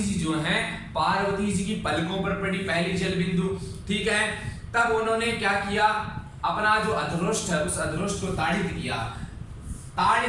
जी जो हैं पार्वती जी की पलकों पर पड़ी पहली जल बिंदु, ठीक है। तब उन्होंने क्या किया, अपना जो अधरोष्ठ है उस अधरोष्ठ को ताड़ित किया।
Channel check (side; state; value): both; identical; correlation 1.00